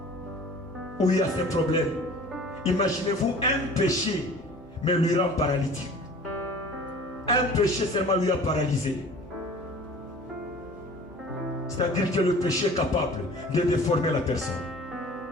où il y a ces problèmes. Imaginez-vous un péché, mais lui rend paralytique. Un péché seulement lui a paralysé. C'est-à-dire que le péché est capable de déformer la personne.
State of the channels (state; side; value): normal; both; correlation 0.45